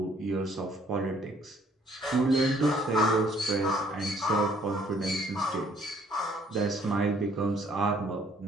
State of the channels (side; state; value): both; normal; correlation 0.62